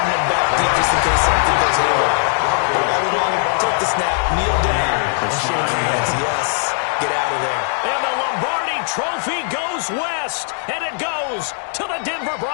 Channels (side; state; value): right; silent; 57 dB below the other